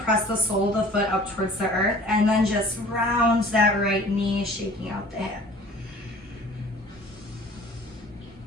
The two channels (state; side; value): normal; both; correlation 0.48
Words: the sole of the foot up towards the earth, and then just round that right knee, shaking out the hip.